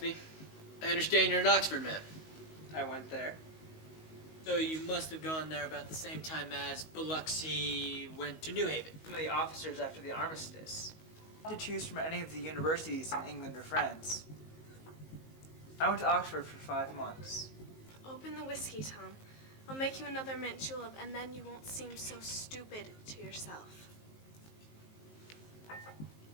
I understand you're an Oxford man. I went there. So you must have gone there about the same time as Biloxi went to New Haven. Some of the officers after the armistice. To choose from any of the universities in England or France. I went to Oxford for 5 months. Open the whiskey, Tom. I'll make you another mint julep, and then you won't seem so stupid to yourself. I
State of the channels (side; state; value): right; late; 19 ms